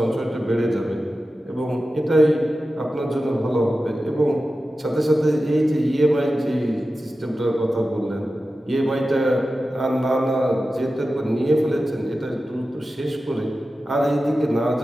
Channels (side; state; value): both; normal; correlation 0.93